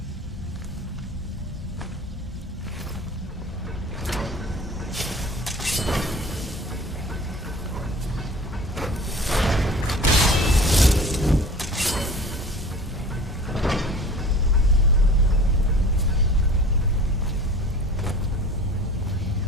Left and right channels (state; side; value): normal; both; correlation 0.43